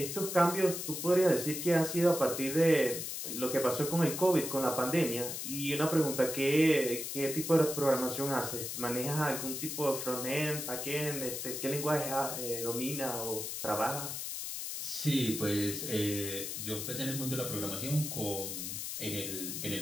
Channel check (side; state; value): left; noise; hiss, 5 dB below the sound